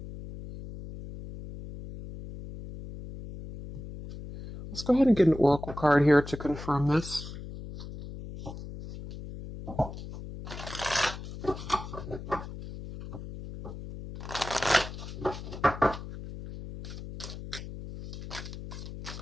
let's go ahead and get an oracle card here to confirm this.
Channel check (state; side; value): noise; left; hum, 11 dB below the sound